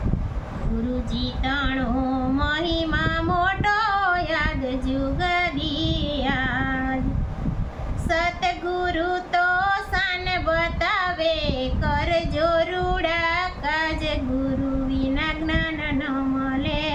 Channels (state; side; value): identical; both; correlation 1.00